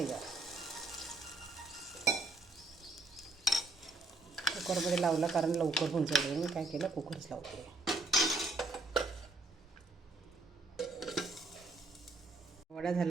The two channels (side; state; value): left; quieter; 3.2 dB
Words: कुकरमध्ये लावला कारण लवकर होऊन जाईल. मी काय केलं कुकरच लावते. वडा